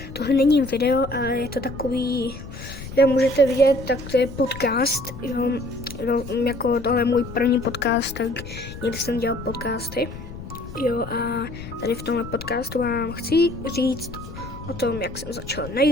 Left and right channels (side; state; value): left; noise; rumble, 12 dB below the sound